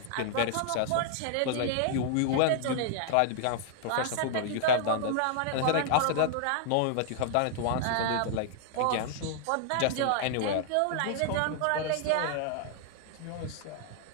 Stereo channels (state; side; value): different; both; correlation -0.01